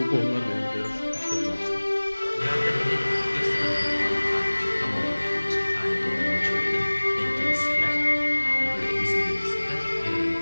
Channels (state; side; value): inverted; both; correlation -1.00